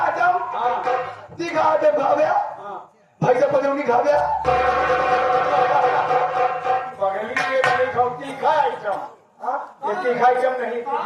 हाँ तीखा आइटम खा गया। हाँ। भाई साहब पजौनी खा गया। बगली के नहीं खाओ तीखा आइटम। हाँ? ये तीखा आइटम नहीं,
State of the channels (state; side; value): identical; both; correlation 1.00